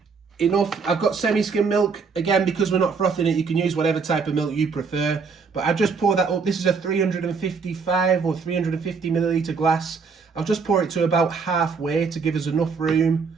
enough. I've got semi-skim milk. Again, because we're not frothing it, you can use whatever type of milk you prefer. But I just pour that up. This is a 355 or 350 milliliter glass. I'll just pour it to about halfway to give us enough room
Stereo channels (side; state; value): left; quieter; 5.2 dB